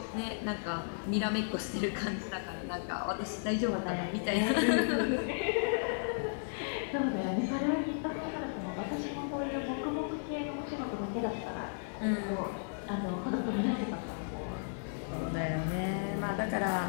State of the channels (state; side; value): silent; right; 55 dB below the other